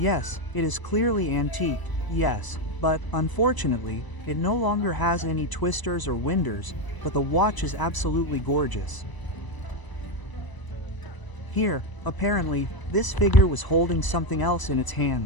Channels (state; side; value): late; right; 1.0 ms